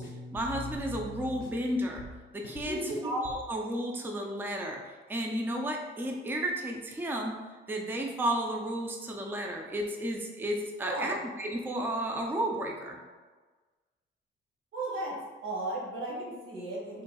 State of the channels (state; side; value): normal; both; correlation 0.51